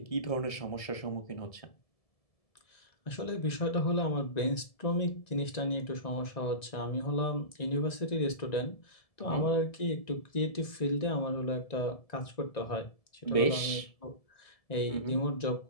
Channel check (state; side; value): late; right; 1.7 ms